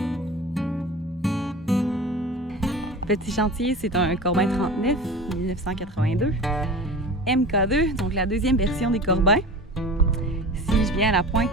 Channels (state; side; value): normal; both; correlation 0.35